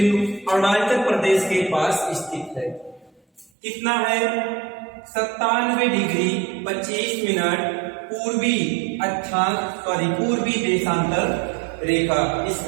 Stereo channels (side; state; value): left; drops out; at 3.5 s